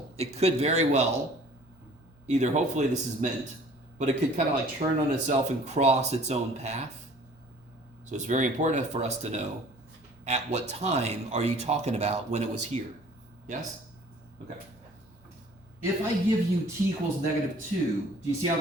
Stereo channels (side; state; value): left; noise; hum, 28 dB below the sound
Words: it could very well, either hopefully this is meant, but it could kind of like turn on itself and cross its own path. So it's very important for us to know at what time are you talking about when it was here. Yes? Okay. If I give you t equals -2, do you see how